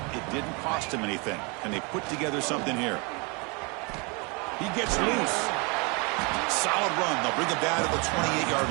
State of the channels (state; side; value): quieter; left; 30.7 dB